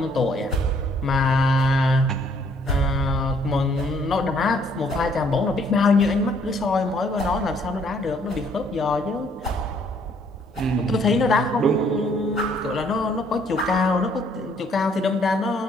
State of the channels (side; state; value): both; normal; correlation 0.64